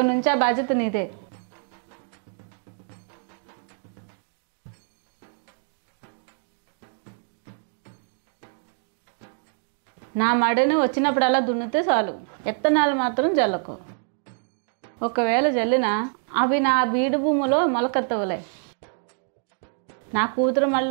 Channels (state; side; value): silent; left; 61 dB below the other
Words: నుంచి ఆ బాధ్యత నీదే. అలాగే అత్తగారు. అటు మీ కూతురు చిన్నమాడిని, ఇటు మీ పెద్దమాడిని రెండింటిని తడాడకుండా నేను దున్నేస్తా అత్తగారు. నా మడిని వచ్చినప్పుడు అలా దున్నితే చాలు. విత్తనాలు మాత్రం జల్లకు. ఒకవేళ జల్లినా అవి నా బీడు భూమిలో మొలకెత్తవులే. నా కూతురు